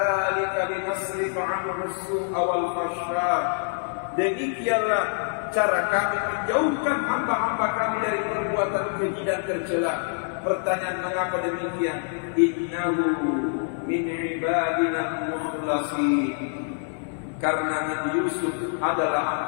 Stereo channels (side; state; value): right; silent; 61 dB below the other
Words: linasrifa 'anhu as-su'a wal fahsya. Demikianlah cara kami menjauhkan hamba-hamba kami dari perbuatan keji dan tercela. Pertanyaan mengapa demikian? Innahu min ibadina mukhlasin. Karena Nabi Yusuf adalah